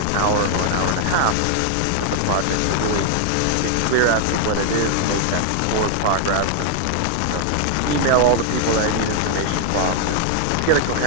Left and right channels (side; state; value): both; different; correlation 0.00